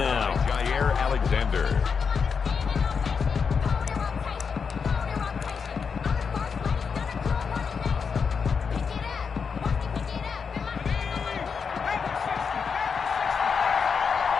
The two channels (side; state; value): right; quieter; 5.9 dB